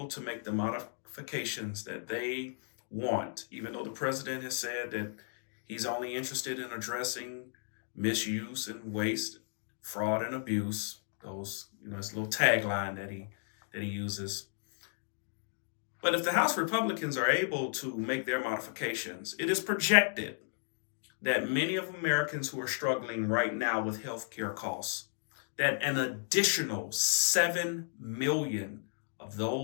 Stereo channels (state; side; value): silent; right; digital silence